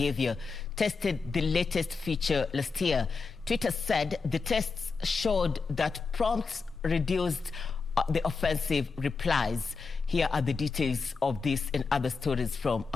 tested the latest feature last year. Twitter said the tests showed that prompts reduced the offensive replies. Here are the details of this and other stories from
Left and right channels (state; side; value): quieter; right; 4.6 dB